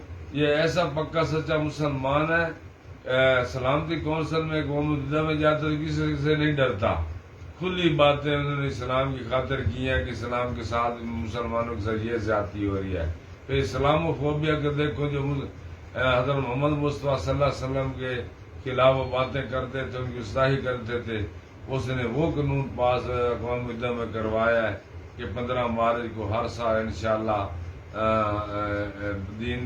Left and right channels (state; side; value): identical; both; correlation 1.00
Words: یہ ایسا پکا سچا مسلمان ہے، سلامتی کونسل میں قوم متحدہ میں جاتا تو کسی سے نہیں ڈرتا، کھلی باتیں انہوں نے اسلام کی خاطر کی ہیں کہ اسلام کے ساتھ مسلمانوں کے ساتھ یہ زیادتی ہو رہی ہے۔ پھر اسلام و فوبیا کے دیکھو جو حضرت محمد مصطفیٰ صلی اللہ علیہ وسلم کے خلاف وہ باتیں کرتے تھے، ان کی گستاخی کرتے تھے، اس نے وہ قانون پاس اقوام متحدہ میں کروایا ہے کہ 15 مارچ کو ہر سال انشاءاللہ